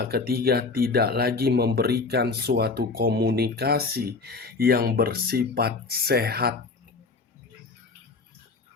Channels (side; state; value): right; quieter; 4.1 dB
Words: ketiga tidak lagi memberikan suatu komunikasi yang bersifat sehat.